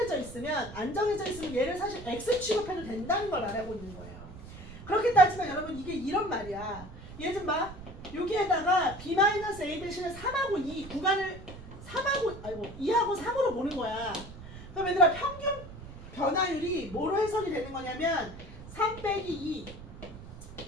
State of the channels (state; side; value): noise; right; rumble, 14 dB below the sound